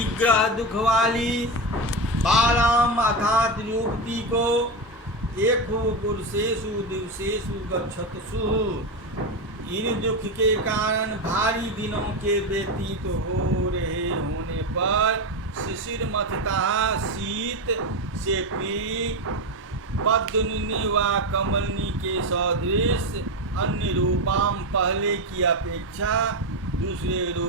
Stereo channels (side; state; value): both; normal; correlation 0.14